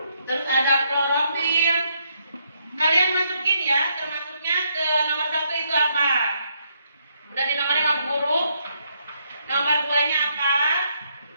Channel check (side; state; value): both; inverted; correlation -0.74